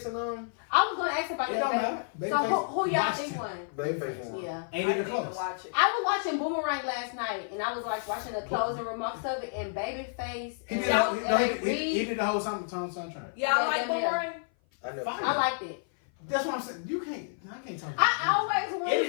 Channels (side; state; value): right; silent; 55 dB below the other